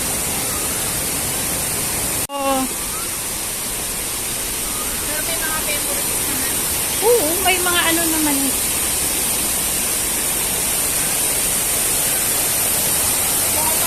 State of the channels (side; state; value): both; identical; correlation 1.00